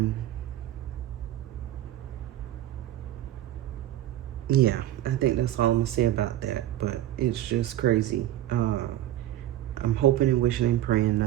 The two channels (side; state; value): left; quieter; 13.4 dB